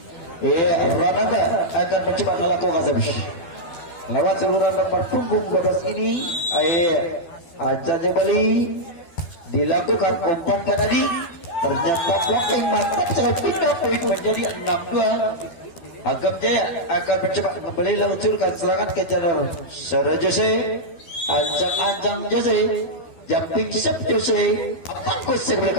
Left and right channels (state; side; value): late; right; 12 ms